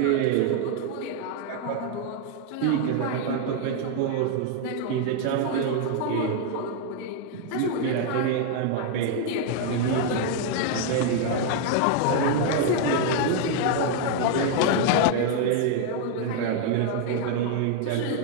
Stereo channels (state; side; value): different; both; correlation 0.00